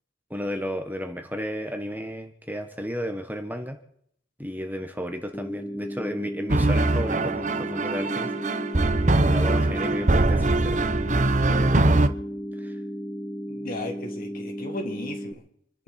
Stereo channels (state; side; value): normal; both; correlation 0.72